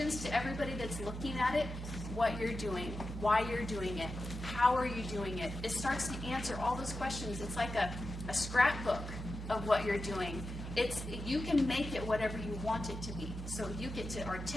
to everybody that's looking at it, what you're doing, why you're doing it, how are you doing it. It starts to answer all those questions. It's like a scrapbook of what you're doing. You can make it whatever you want it to be. So you get to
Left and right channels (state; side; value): normal; both; correlation 0.91